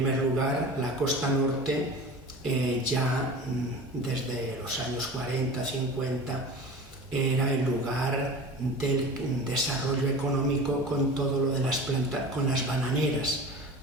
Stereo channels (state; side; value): normal; both; correlation 0.35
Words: lugar, la costa norte ya desde los años 40, 50 era el lugar del desarrollo económico con todo lo de con las bananeras,